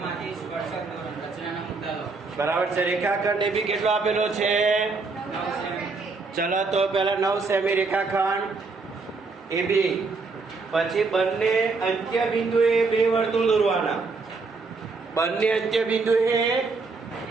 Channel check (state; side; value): quieter; left; 4.1 dB